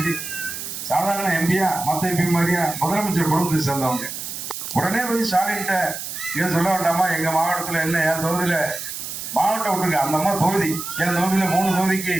சாதாரண எம்பியா? மத்த எம்பி மாதிரியா? முதலமைச்சர் குடும்பத்தை சேர்ந்தவங்க. உடனே போய் ஸ்டாலின்கிட்ட இதை சொல்ல வேண்டாமா? எங்க மாவட்டத்துல என்ன, என் தொகுதியில மாவட்டம் விட்டுருக்க அந்த அம்மா தொகுதி, என் தொகுதியில 3 தொகுதிக்கு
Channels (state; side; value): noise; right; hiss, 7 dB below the sound